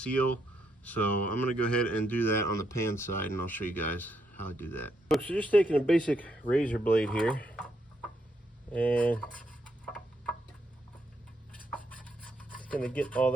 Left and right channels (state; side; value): normal; both; correlation 0.77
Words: So I'm gonna go ahead and do that on the pan side, and I'll show you guys how I do that. So just taking a basic razor blade here, and just gonna get all